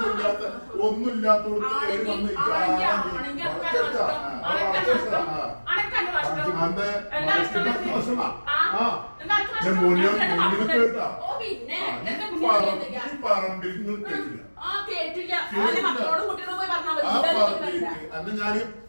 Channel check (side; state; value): both; inverted; correlation -1.00